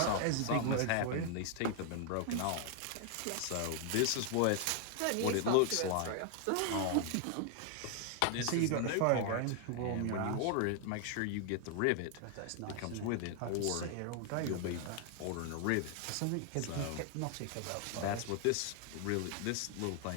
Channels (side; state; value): both; different; correlation 0.00